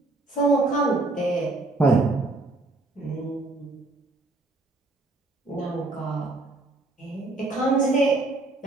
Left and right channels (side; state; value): left; quieter; 3.0 dB